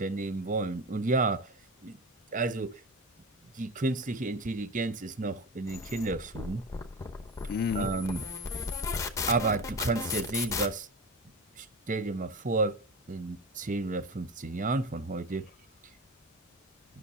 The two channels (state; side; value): normal; both; correlation 0.27